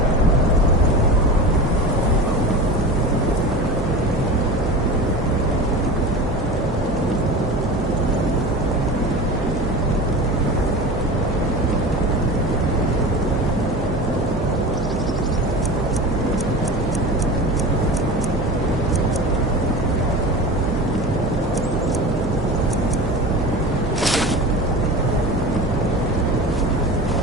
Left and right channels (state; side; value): normal; both; correlation 0.31